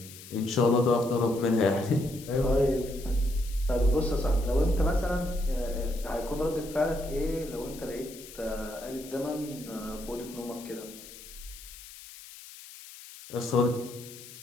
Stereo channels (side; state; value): left; noise; hiss, 16 dB below the sound